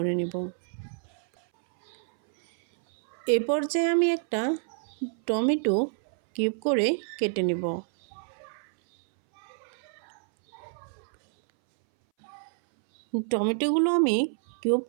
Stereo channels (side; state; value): left; silent; 59 dB below the other